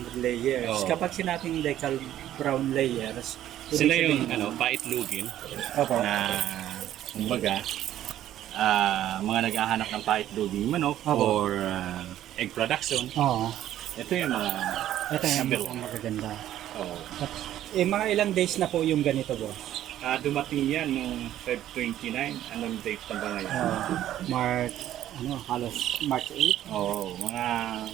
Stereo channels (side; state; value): left; quieter; 12.3 dB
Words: layers. Oo. Kapag sinabing decal brown layers, Sila ibig yung sabihin- paitlugin Opo. na kumbaga mga naghahanap ng paitluging manok Opo. or egg production. Oo. Ito yung mga Ito yung number mga one. magaganda. Oh. Mga ilang days na po yung ganito boss? Dumating yan noong Feb 29. Anong date na ba ngayon? March, halos March 8. Oo, mga